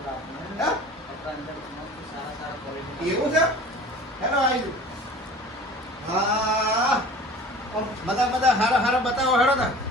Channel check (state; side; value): normal; both; correlation 0.42